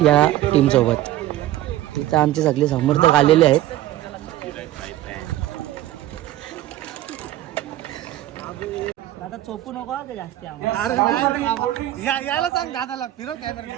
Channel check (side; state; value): left; quieter; 14.3 dB